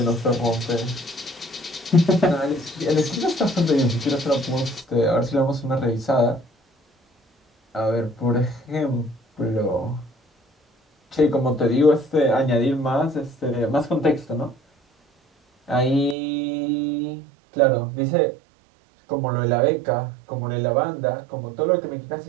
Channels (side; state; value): left; drops out; at 16.2 s